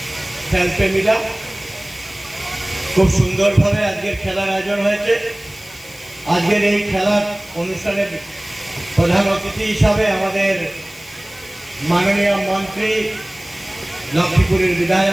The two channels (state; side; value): noise; left; hiss, 22 dB below the sound